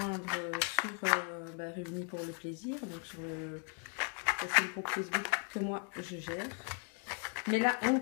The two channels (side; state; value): right; quieter; 38.0 dB